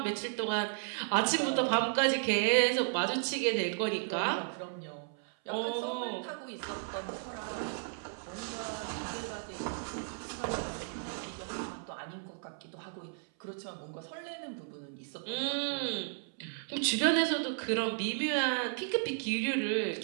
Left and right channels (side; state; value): left; silent; 55 dB below the other